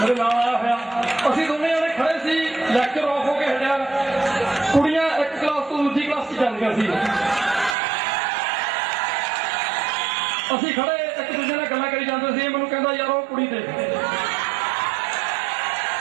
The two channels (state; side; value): drops out; left; at 7.8 s